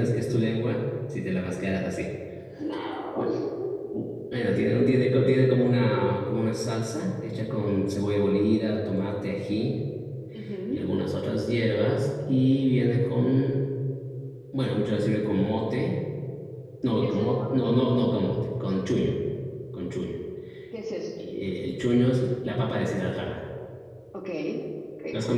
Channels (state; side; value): identical; both; correlation 1.00